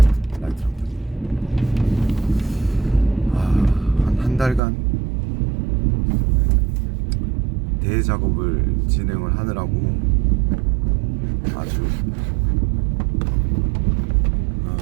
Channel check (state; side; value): drops out; left; at 4.6 s